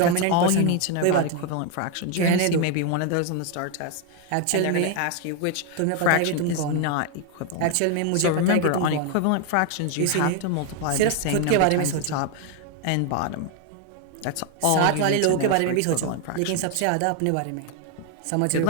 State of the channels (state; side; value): different; both; correlation 0.01